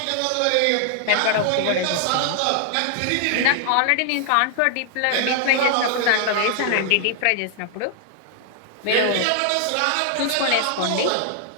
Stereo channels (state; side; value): different; both; correlation 0.00